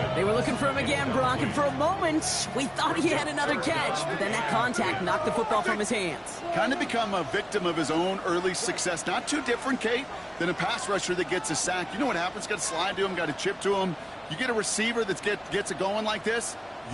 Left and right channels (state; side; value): identical; both; correlation 1.00